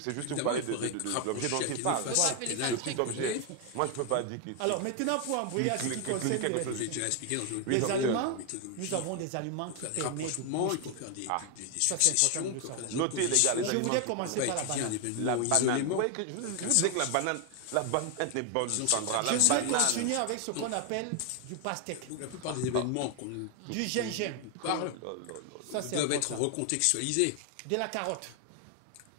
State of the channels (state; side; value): different; both; correlation 0.00